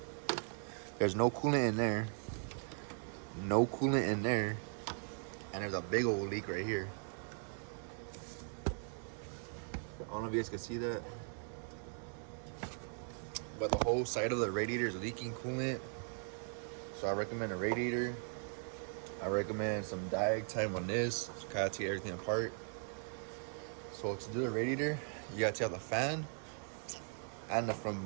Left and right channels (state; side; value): silent; left; 52 dB below the other